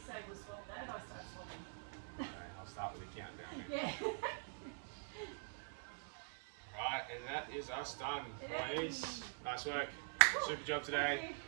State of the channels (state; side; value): silent; left; digital silence